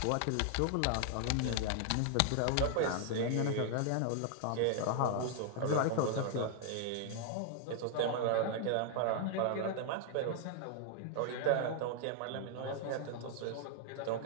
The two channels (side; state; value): both; different; correlation 0.00